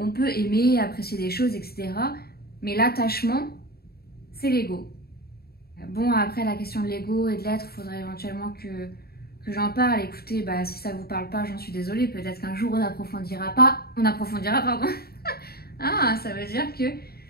peut aimer, apprécier des choses, etc. Mais l'attachement, c'est l'ego. Bon, après, la question de l'ego et de l'être, il faudrait éventuellement que j'en parle. Écoutez, bah, si ça vous parle pas, j'en suis désolée. Peut-être qu'un jour, on approfondira, pardon. Ah, ça veut dire que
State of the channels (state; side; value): late; right; 0.45 ms